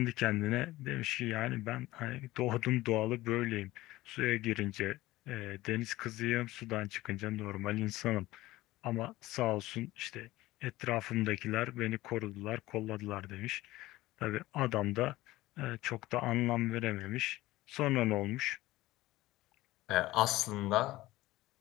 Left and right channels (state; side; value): quieter; right; 17.8 dB